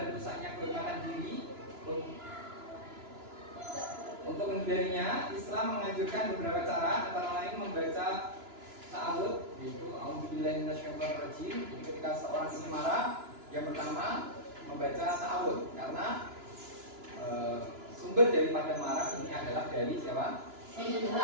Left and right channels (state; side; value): late; left; 2.9 ms